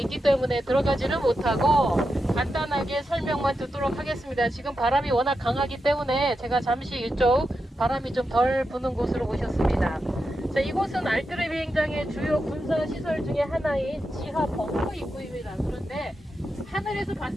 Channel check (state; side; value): normal; both; correlation 0.88